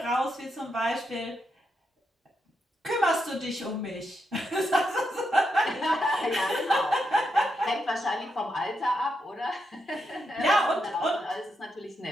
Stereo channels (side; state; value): both; normal; correlation 0.83